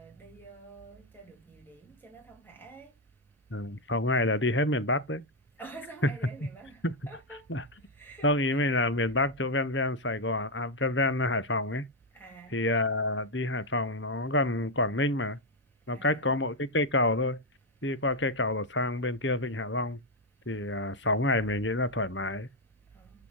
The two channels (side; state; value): both; normal; correlation 0.03